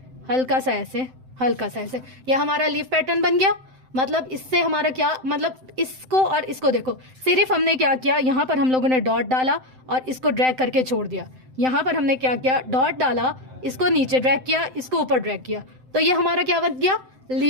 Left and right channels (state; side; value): late; left; 7.8 ms